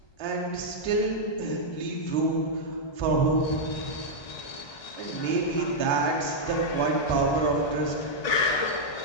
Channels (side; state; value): right; late; 1.2 ms